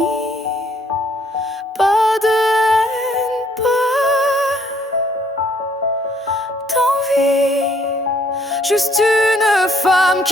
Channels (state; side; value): normal; both; correlation 0.65